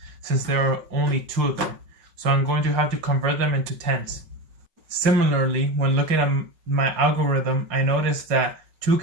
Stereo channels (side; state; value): left; late; 5.4 ms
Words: since there are only 2 of them. So I'm going to have to convert them into tens. Similarly, when looking at my algorithm, I noticed that 2